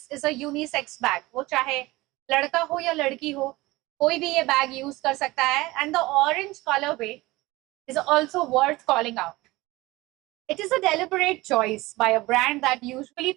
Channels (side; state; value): left; quieter; 20.4 dB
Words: is a unisex bag. वो चाहे लड़का हो या लड़की हो, कोई भी ये बैग यूज कर सकता है. And the orange colour way is also worth calling out. It is a deliberate choice by a brand that usually